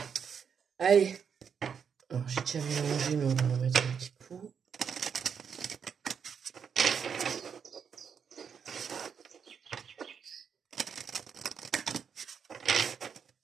Allez. Alors, j'ai déjà mélangé, mais on va en mettre un petit coup.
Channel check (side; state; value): left; quieter; 7.0 dB